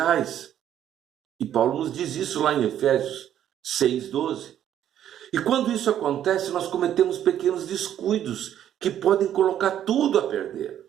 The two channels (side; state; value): left; quieter; 10.7 dB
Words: E Paulo nos diz isso lá em Efésios 6:12. E quando isso acontece, nós cometemos pequenos descuidos que podem colocar tudo a perder.